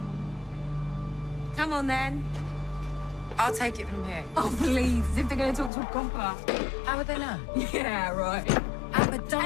Come on, then. I'll take it from here. Oh, please, as if they're going to talk to a copper. How would they know? Yeah, right. Amber,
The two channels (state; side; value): drops out; right; at 5.7 s